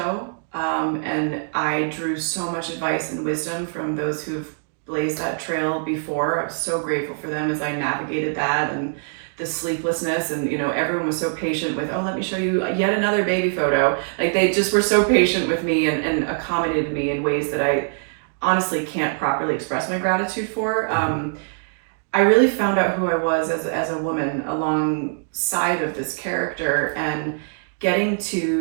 And I drew so much advice and wisdom from those who've blazed that trail before. I was so grateful for them as I navigated that, and the sleeplessness, and everyone was so patient with, oh, let me show you yet another baby photo. Like, they just were so patient with me and accommodated me in ways that I honestly can't properly express my gratitude for. I really found out who I was as a woman alongside of this character, and getting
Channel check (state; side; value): silent; left; digital silence